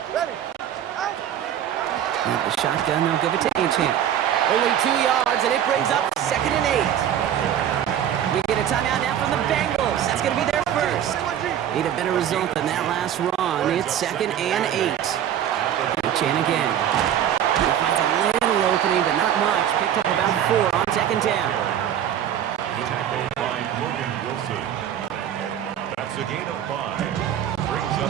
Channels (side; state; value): left; quieter; 10.2 dB